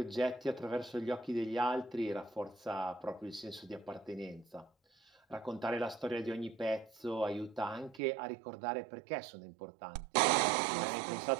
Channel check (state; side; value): drops out; left; at 8.0 s